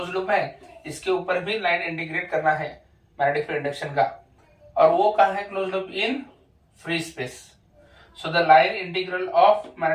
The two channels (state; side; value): identical; both; correlation 1.00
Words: लूप है इसके ऊपर भी लाइन इंटीग्रेट करना है मैग्नेटिक फील्ड इंडक्शन का। और वो कहां है close loop? In free space. So the line integral of